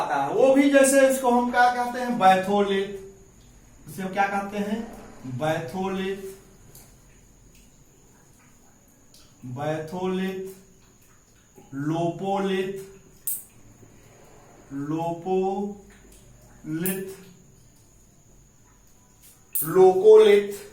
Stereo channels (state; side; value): identical; both; correlation 1.00